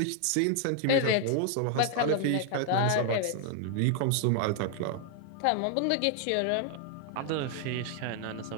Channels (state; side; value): different; both; correlation 0.00